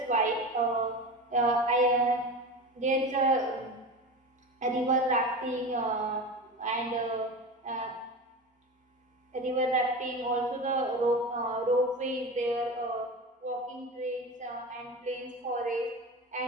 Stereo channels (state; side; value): normal; both; correlation 0.28